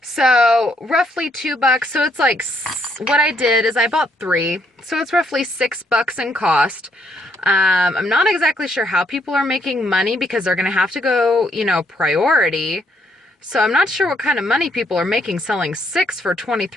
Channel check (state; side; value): normal; both; correlation 0.71